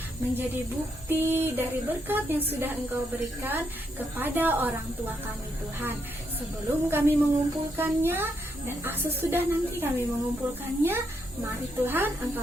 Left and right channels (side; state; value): both; normal; correlation 0.78